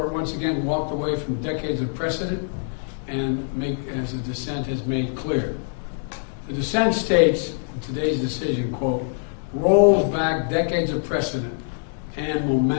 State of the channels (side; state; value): right; silent; digital silence